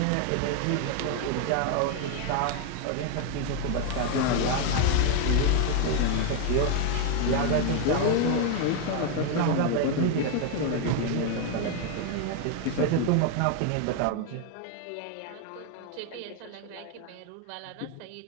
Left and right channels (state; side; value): different; both; correlation 0.01